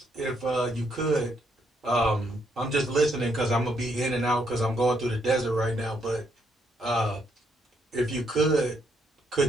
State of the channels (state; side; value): normal; both; correlation 0.74